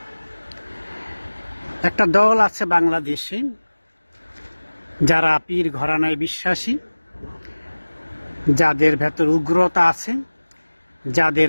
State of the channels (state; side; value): inverted; both; correlation -1.00